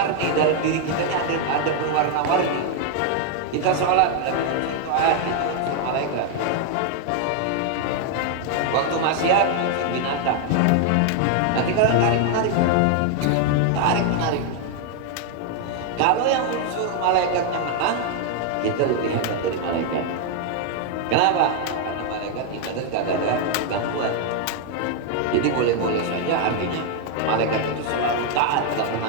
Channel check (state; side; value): different; both; correlation 0.00